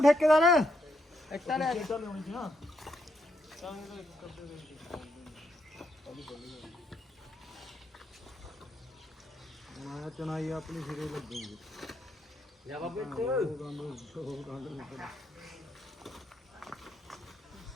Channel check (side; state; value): both; normal; correlation 0.78